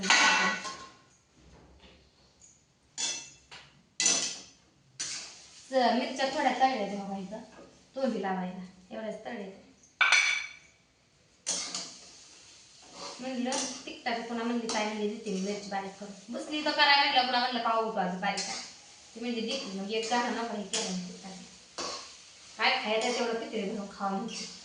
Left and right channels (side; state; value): both; identical; correlation 1.00